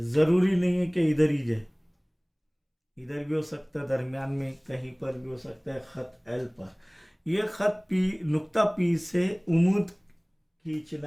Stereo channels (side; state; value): both; identical; correlation 1.00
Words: ज़रूरी नहीं है कि इधर ही जाए, इधर भी हो सकता है, दरमियान में कहीं पर भी हो सकता है ख़त एल पर। यह ख़त पी नुक्ता पी से उमूद